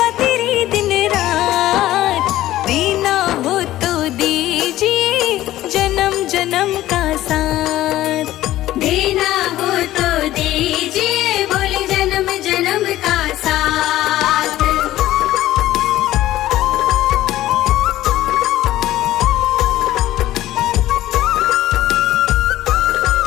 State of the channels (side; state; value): right; quieter; 14.8 dB